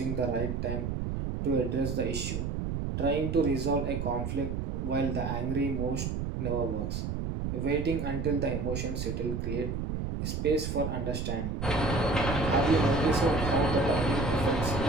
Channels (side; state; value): right; noise; rumble, 3 dB below the sound